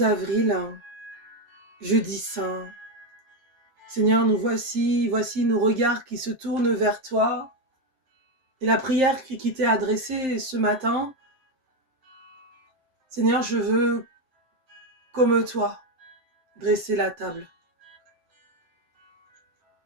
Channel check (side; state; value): left; late; 7.7 ms